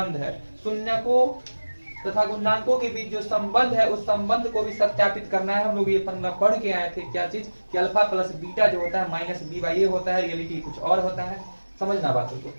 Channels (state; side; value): inverted; both; correlation -1.00